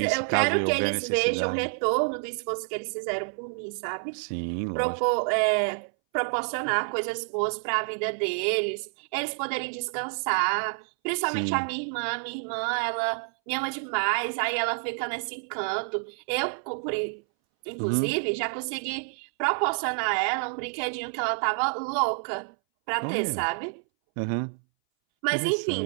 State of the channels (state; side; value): silent; left; 59 dB below the other